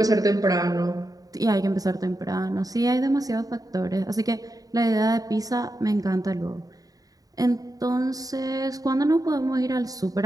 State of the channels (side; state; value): left; late; 0.18 ms